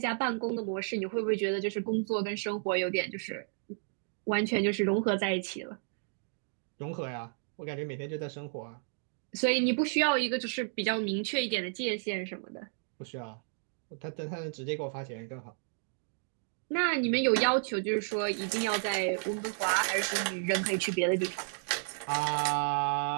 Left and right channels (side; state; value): left; silent; digital silence